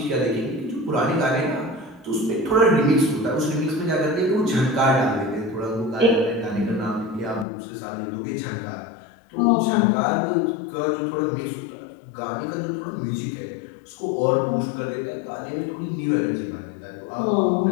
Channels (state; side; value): drops out; right; at 7.5 s